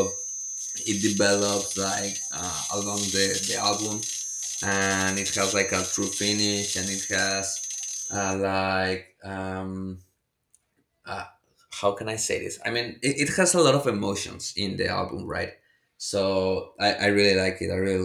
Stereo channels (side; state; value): both; identical; correlation 1.00